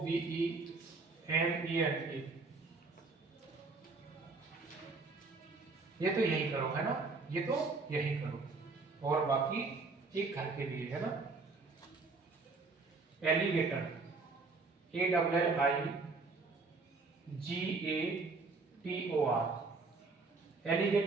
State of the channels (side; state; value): left; quieter; 4.0 dB